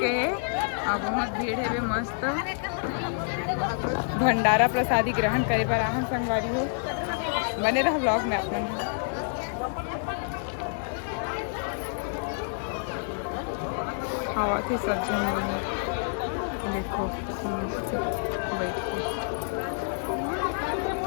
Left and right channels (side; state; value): right; silent; digital silence